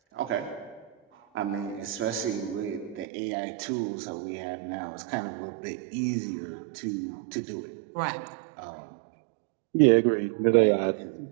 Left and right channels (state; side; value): drops out; left; at 3.1 s